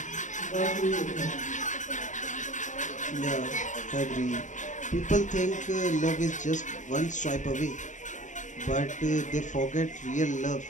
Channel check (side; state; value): right; late; 0.36 ms